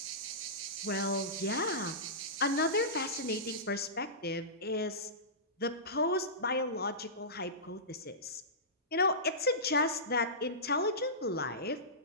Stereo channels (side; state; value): both; normal; correlation -0.19